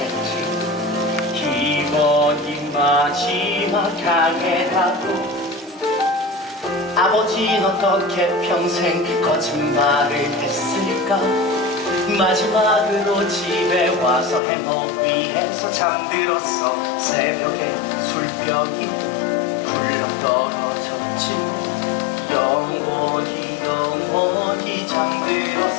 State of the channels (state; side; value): drops out; right; at 14.4 s